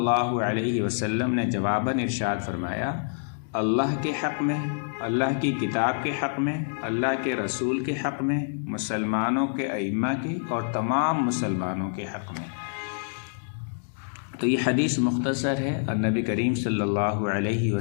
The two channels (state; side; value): silent; right; digital silence